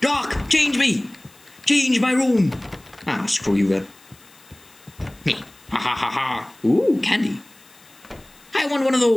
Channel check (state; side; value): noise; left; hiss, 27 dB below the sound